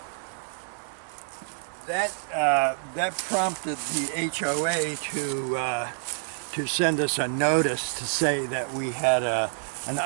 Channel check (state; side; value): silent; left; 60 dB below the other